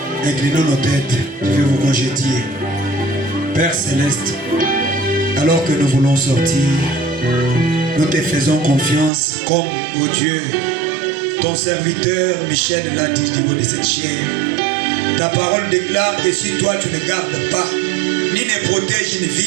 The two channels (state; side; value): drops out; left; at 9.1 s